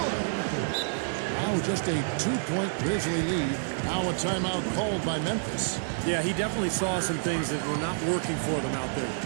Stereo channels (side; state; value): left; silent; digital silence